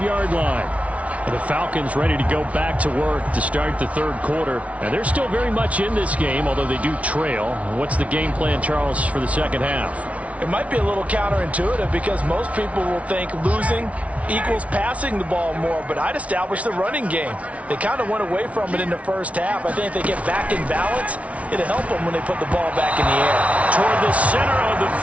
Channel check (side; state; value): left; late; 0.065 ms